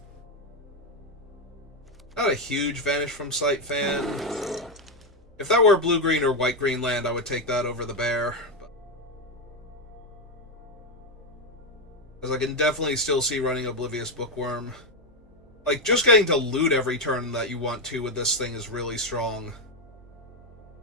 Not a huge Vanish from Sight fan. If that were blue-green or white-green land, I would take that over the bear. Because I can definitely still see running Oblivious Bookworm. Like, just getting to loot every turn that you want to with this thing is really strong.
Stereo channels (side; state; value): both; normal; correlation 0.07